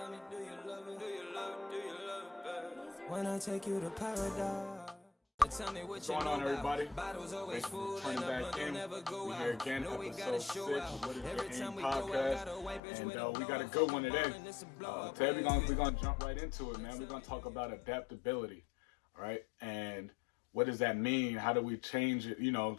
me, do you love it? Do you love it? Do you love it, babe? When I take you to paradise. Tell me what What's going on, everybody? Bottles always Thanks full for turning and back in. never go We out. here again, No, we episode gotta 6 show of out. What is Every the Aim time we go out, podcast. gotta wipe it And with we got a a good one today. blow. Today we're gonna jump right into it, man. We're gonna talk about adaptability, all right? And what does that mean? How do we change it?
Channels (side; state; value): right; drops out; at 12.8 s